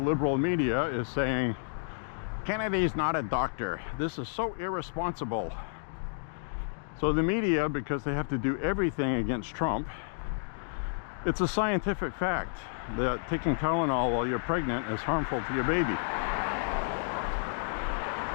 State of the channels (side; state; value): right; silent; digital silence